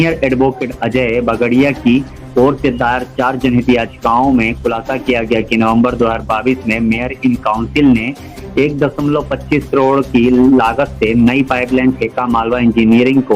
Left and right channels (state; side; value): identical; both; correlation 1.00